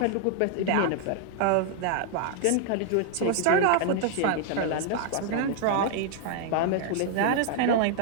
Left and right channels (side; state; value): both; different; correlation -0.01